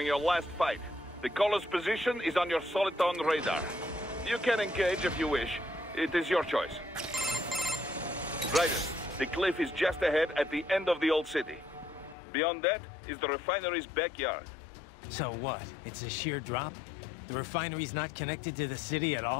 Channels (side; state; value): right; drops out; at 12.2 s